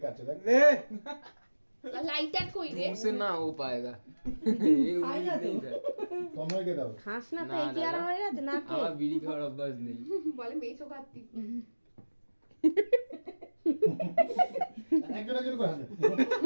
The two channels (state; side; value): inverted; both; correlation -1.00